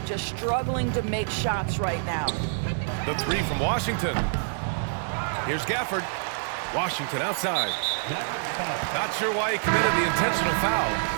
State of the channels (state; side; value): silent; left; digital silence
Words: just struggling to make shots right now. The three from Washington. Here's Gafford. Washington outside. Not sure why he committed the intentional foul.